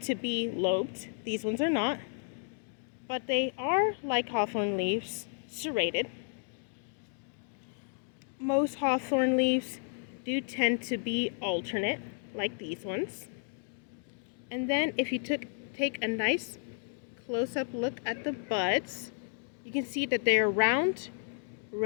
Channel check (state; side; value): silent; right; 56 dB below the other